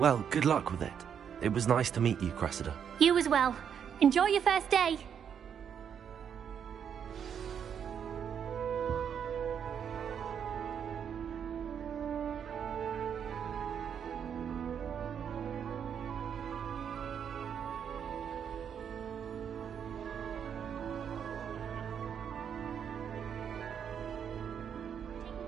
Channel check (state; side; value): quieter; left; 8.0 dB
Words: good luck with it. It was nice to meet you, Cressida. You as well. Enjoy your first day.